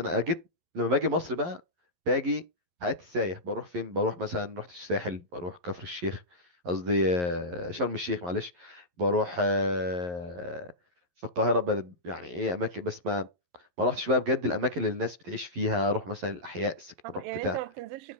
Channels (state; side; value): late; left; 11 ms